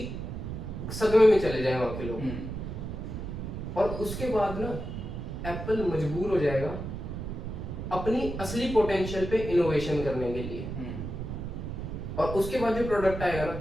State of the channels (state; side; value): noise; right; rumble, 6 dB below the sound